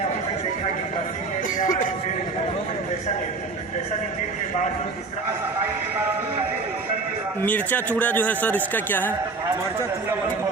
मिर्चा चूड़ा जो है सर, इसका क्या है? मरचा चूड़ा वाली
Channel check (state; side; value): quieter; left; 3.9 dB